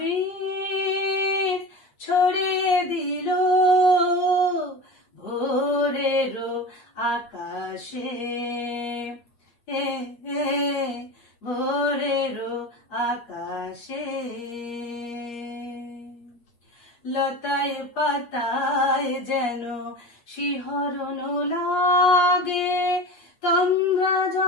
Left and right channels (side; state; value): right; late; 8.4 ms